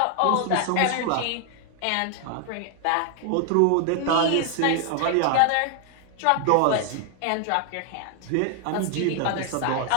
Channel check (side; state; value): both; different; correlation 0.00